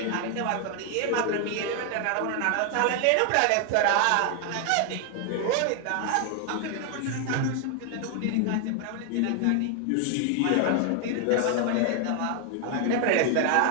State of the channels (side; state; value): both; different; correlation 0.00